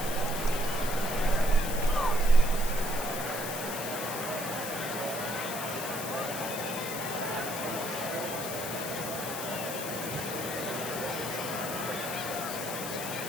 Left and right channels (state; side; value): noise; left; hiss, 6 dB below the sound